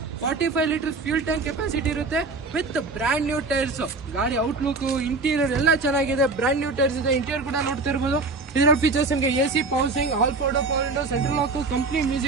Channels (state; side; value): quieter; left; 3.7 dB